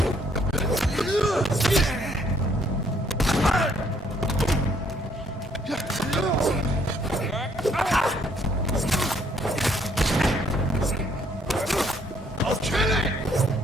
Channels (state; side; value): normal; both; correlation 0.66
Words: I'll kill it!